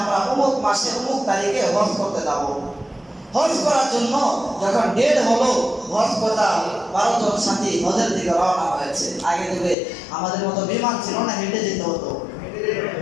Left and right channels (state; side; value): drops out; right; at 9.8 s